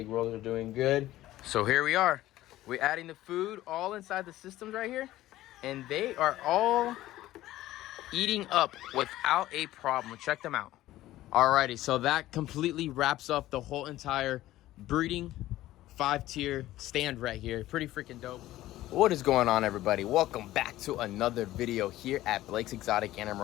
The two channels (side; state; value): right; quieter; 15.3 dB